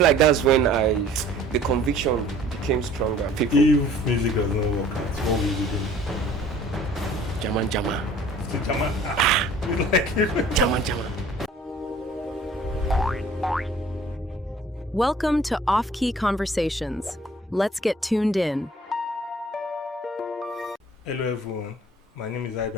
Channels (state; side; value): normal; both; correlation 0.52